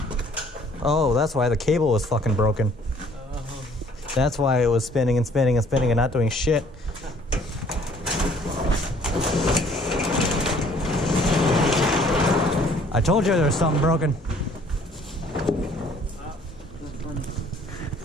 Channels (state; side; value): normal; both; correlation 0.58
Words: Oh, that's why the cable was fucking broken. That's why it was spinning and spinning and spinning and not doing shit. I told you there was something broken. That's funny.